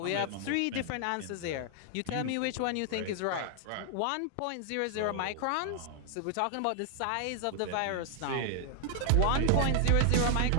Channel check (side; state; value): both; different; correlation 0.00